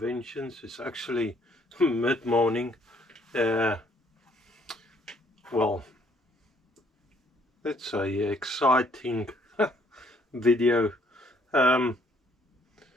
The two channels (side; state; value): both; normal; correlation 0.65